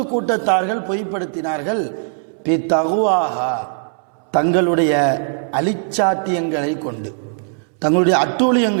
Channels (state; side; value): silent; left; 65 dB below the other